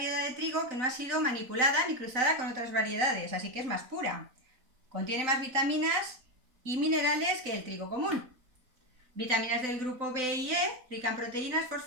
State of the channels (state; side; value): late; left; 3.9 ms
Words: de trigo que no ha sido manipulada ni cruzada con otras variedades, así que es más pura. Contiene más vitaminas y minerales que el trigo común. Vitaminas del grupo B y E, rica en proteínas,